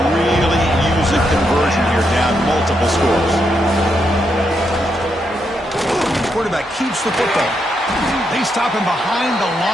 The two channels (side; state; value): both; normal; correlation 0.80